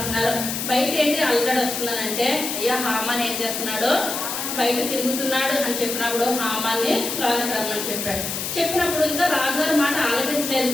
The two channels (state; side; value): noise; left; hiss, 4 dB below the sound